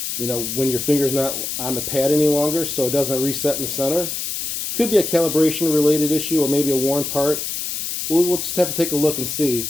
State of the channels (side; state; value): left; noise; hiss, 4 dB below the sound